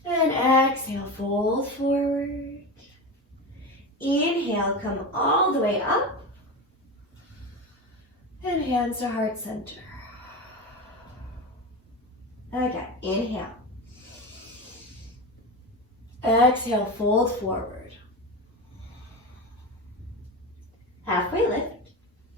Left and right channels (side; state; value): both; normal; correlation 0.23